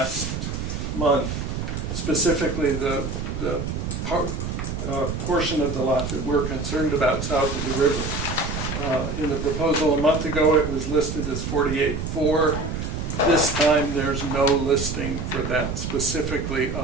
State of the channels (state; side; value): noise; right; rumble, 4 dB below the sound